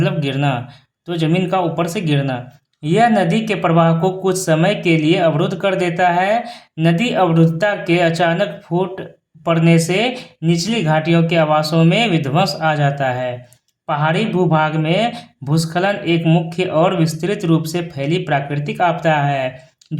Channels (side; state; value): both; identical; correlation 1.00